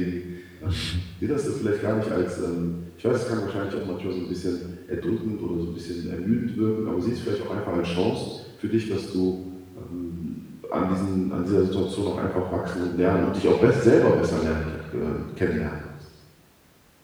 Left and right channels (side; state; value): both; identical; correlation 1.00